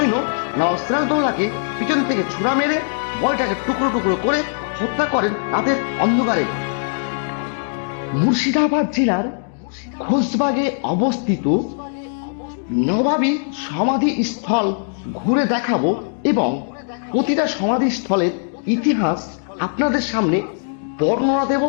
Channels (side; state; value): right; silent; digital silence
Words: নবাব সিরাজদৌল্লাকে পিছন থেকে ছুরা মেরে বডিটাকে টুকরো টুকরো করে হত্যা করেন রাতের অন্ধকারে। মুর্শিদাবাদ জেলার খোশবাগে অবস্থিত নবাবী সমাধি স্থল ঘুরে দেখাবো এবং প্রতিটা সমাধি স্থলের ইতিহাস আপনাদের সামনে বর্ণনা দেব